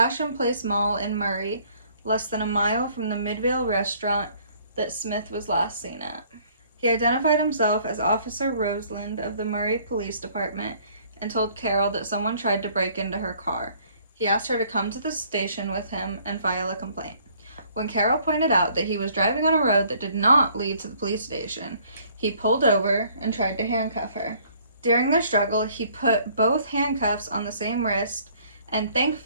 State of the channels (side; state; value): both; inverted; correlation -0.60